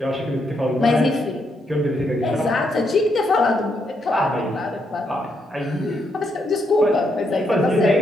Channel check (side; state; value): both; normal; correlation 0.78